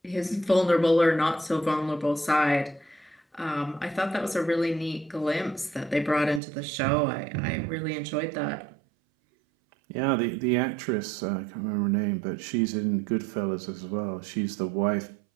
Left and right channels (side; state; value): left; drops out; at 6.4 s